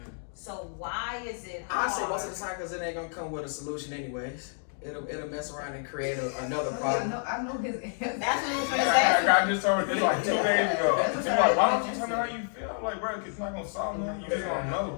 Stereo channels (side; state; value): right; silent; 57 dB below the other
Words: So why is it I hard? say most of the time because it ain't gonna come with a solution anyways. It'll mess around and create another problem. I know his answer. That's what I was trying to say. I just told her this like 2 days ago. She's like, why don't you tell me how you feel? I'm like, bro, it's not gonna solve nothing. You just gonna